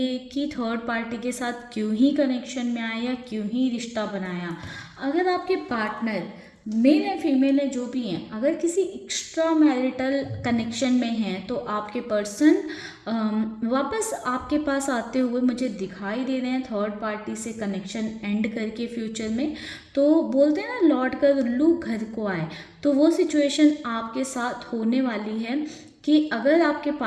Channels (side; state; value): both; identical; correlation 1.00